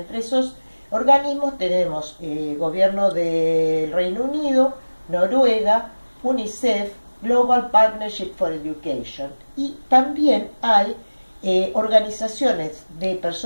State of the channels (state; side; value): inverted; both; correlation -1.00